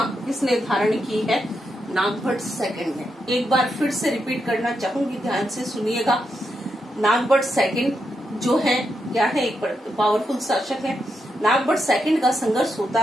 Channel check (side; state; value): both; normal; correlation 0.84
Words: किसने धारण की है, नागभट्ट सेकंड ने। एक बार फिर से रिपीट करना चाहूंगी, ध्यान से सुनिएगा। नागभट्ट सेकंड जो है क्या है, एक पावरफुल शासक है। नागभट्ट सेकंड का संघर्ष होता